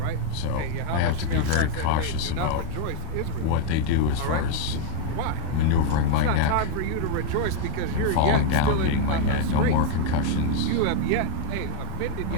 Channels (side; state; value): both; different; correlation 0.00